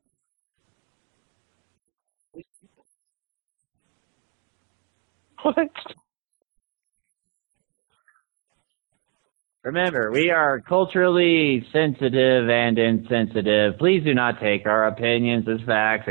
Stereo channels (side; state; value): left; quieter; 37.0 dB